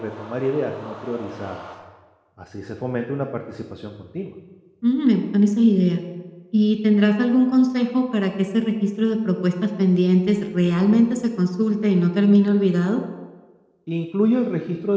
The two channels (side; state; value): both; identical; correlation 1.00